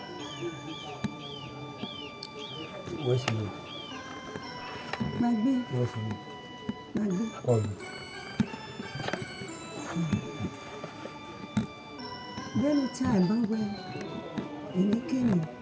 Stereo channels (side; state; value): both; identical; correlation 1.00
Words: Where's you? magbe Where's you? magbe Oh, bẹ́ẹ̀ni tí àìbá wẹ èlékèmí